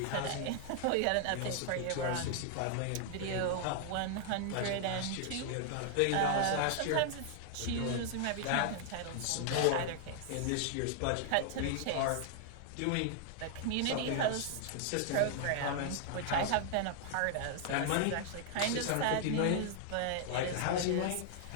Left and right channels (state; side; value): different; both; correlation 0.00